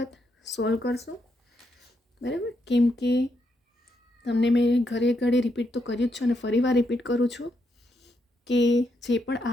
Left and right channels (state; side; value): normal; both; correlation 0.79